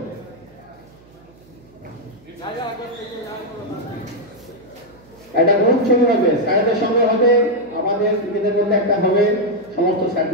একটা গ্রুপ ছবি হবে, স্যারদের সঙ্গে হবে, আমাদের নিজেদের মধ্যে একটা হবে, সমস্ত স্যার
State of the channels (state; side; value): noise; right; hum, 27 dB below the sound